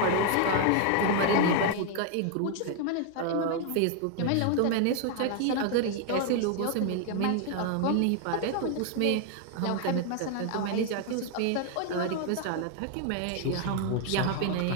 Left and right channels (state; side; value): different; both; correlation 0.00